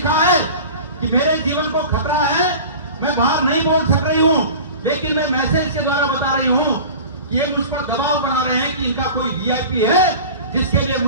है कि मेरे जीवन को खतरा है, मैं बाहर नहीं बोल सक रही हूँ, लेकिन मैं मैसेज के द्वारा बता रही हूँ कि ये मुझ पर दबाव बना रहे हैं कि इनका कोई वीआईपी है जिसके लिए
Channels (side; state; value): both; inverted; correlation -0.37